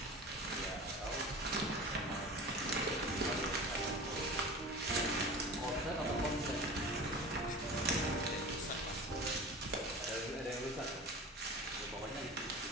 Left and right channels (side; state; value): both; normal; correlation 0.34